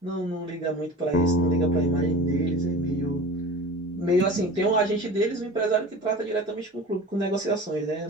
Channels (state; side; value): normal; both; correlation 0.36